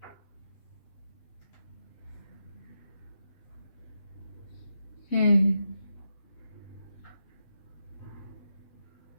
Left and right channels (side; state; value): right; late; 8.0 ms